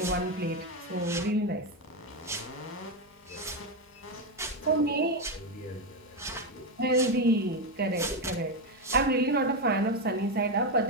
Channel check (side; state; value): both; normal; correlation 0.09